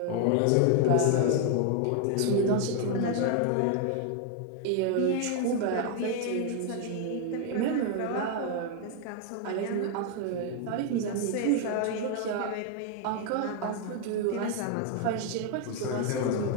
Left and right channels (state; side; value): different; both; correlation 0.00